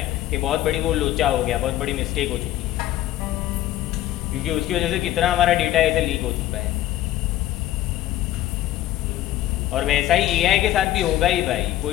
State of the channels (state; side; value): quieter; right; 13.8 dB